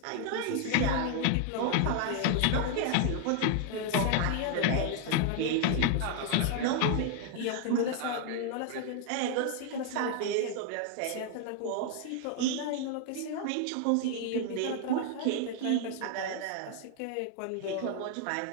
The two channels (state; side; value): different; both; correlation 0.00